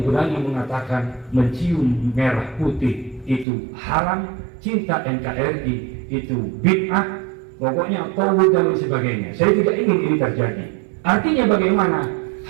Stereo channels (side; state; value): left; drops out; at 3.5 s